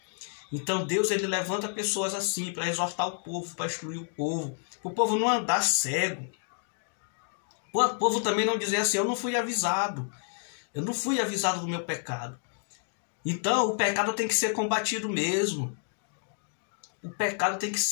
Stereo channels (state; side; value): silent; right; 58 dB below the other